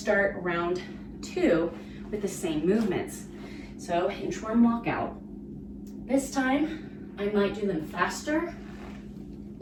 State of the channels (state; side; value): identical; both; correlation 1.00